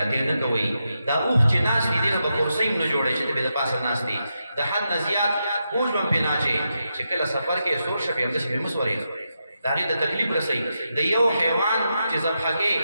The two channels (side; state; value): both; inverted; correlation -0.86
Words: نکوئی دا اوخ چی ناس دی دینا بکرسیم نجوڑے چی بے دا پاسا ناس دی دا حد نزیاد بوج بم پی ناچے چکل سفر کے سور شفی امدس پی مسورے داغی دا تکلیف رسی دا یو حیوان چی زبحا کے